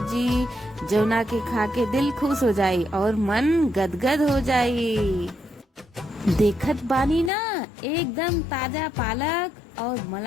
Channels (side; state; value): right; drops out; at 7.3 s